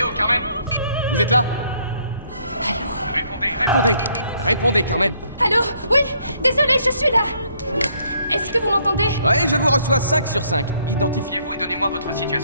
oh, Carmen? Vous êtes là? Allô? Répondez! Répondez, Carmen! Allô? Oui, désolé, je suis là. Est-ce que vous m'entendez? Ouais, je vous reçois 5 sur 5. Identifiez-vous et donnez-moi votre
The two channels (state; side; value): inverted; both; correlation -0.67